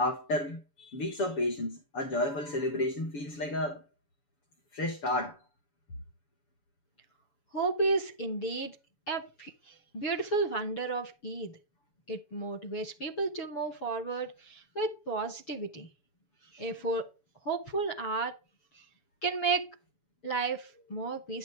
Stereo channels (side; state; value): right; late; 7.0 ms